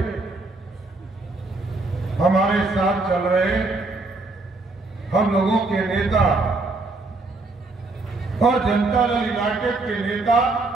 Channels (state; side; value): quieter; left; 3.4 dB